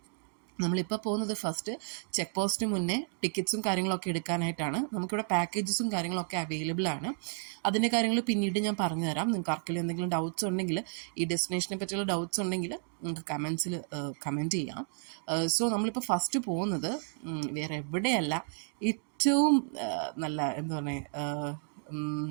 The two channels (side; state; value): left; silent; 56 dB below the other